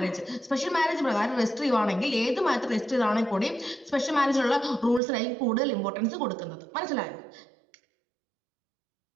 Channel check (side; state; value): left; drops out; at 5.0 s